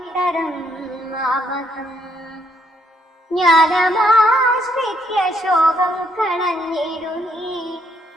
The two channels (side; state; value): both; normal; correlation 0.72